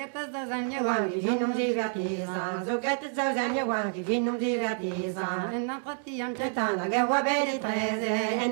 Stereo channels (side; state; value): left; silent; 59 dB below the other